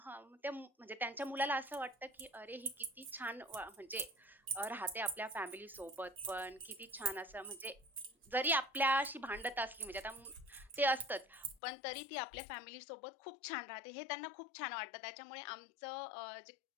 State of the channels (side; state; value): right; drops out; at 11.6 s